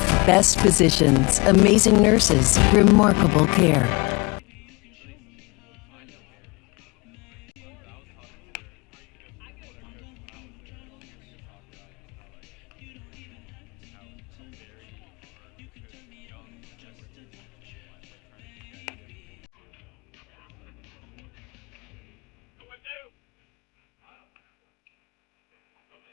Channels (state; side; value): quieter; right; 27.2 dB